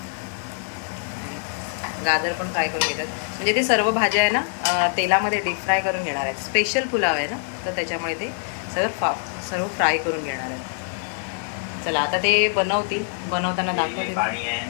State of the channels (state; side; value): silent; right; 63 dB below the other